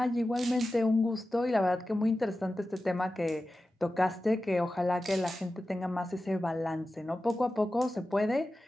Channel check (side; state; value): both; normal; correlation 0.94